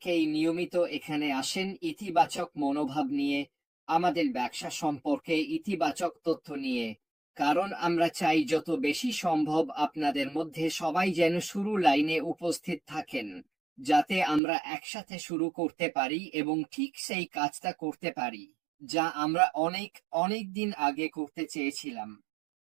নিয়মিত এখানে আসেন ইতিবাচক মনোভাব নিয়ে, আমাদের ব্যবসা সম্পর্কে ইতিবাচক তথ্য নিয়ে, কারণ আমরা চাই যত বেশি সম্ভব আপনাদের মধ্যে সবাই যেন শুরু লাইনে উপস্থিত থাকেন, যাতে আমরা একসাথে শুরু করতে পারি এবং ঠিক সেই কাজটা করতে পারি যা আমরা অনেক অনেক দিন আগে করতে চেয়েছিলাম।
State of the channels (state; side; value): drops out; left; at 14.4 s